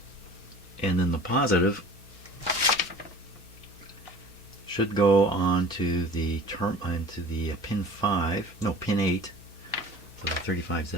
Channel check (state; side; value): normal; both; correlation 0.43